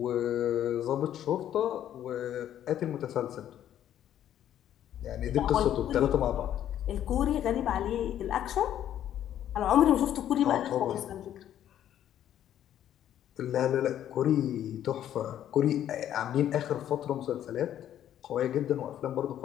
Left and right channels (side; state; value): right; quieter; 11.0 dB